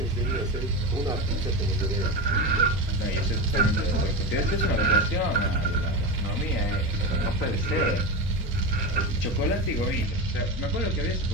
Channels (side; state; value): both; normal; correlation 0.19